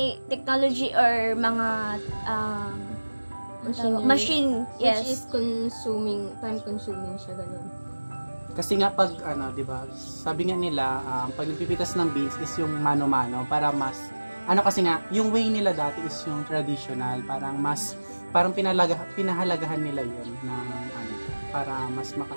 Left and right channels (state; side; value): inverted; both; correlation -1.00